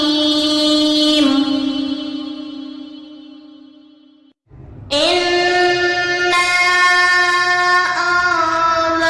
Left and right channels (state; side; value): identical; both; correlation 1.00